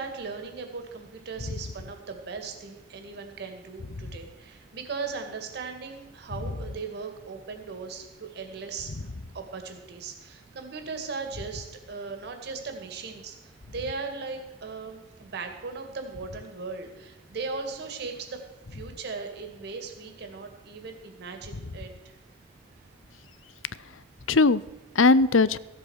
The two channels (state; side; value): normal; both; correlation 0.11